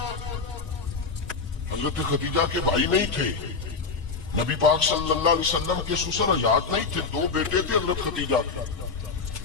حضرت خدیجہ کے بھائی نہیں تھے، نبی پاک صلی اللہ علیہ وسلم کے سسر حیات نہیں تھے، دو بیٹے تھے حضرت خدیجہ کے،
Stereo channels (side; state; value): right; quieter; 4.7 dB